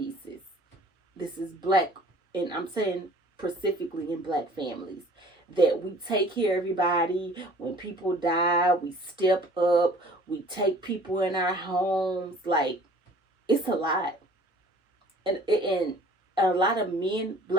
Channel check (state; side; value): normal; both; correlation 0.51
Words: This is black, and I'm saying specifically in black families, that we take care of everybody. When people die, we step up. We take people in our homes. Like, it's a lot. And a lot of men,